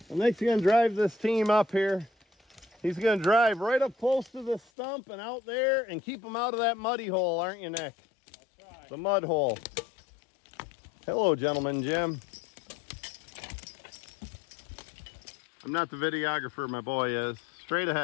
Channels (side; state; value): right; drops out; at 4.7 s